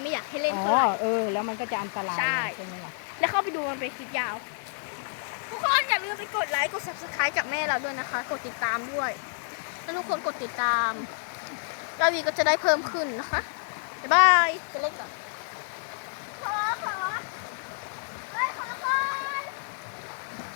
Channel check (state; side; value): silent; right; 59 dB below the other